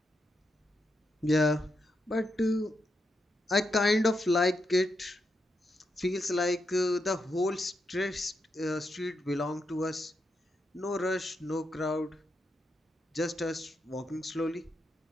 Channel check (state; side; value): normal; both; correlation 0.83